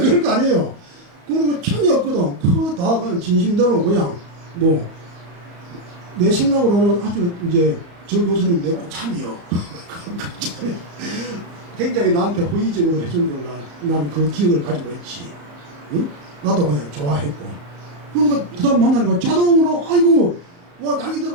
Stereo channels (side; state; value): left; late; 34 ms